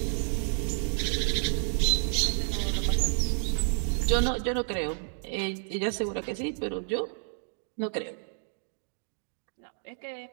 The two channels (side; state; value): left; silent; digital silence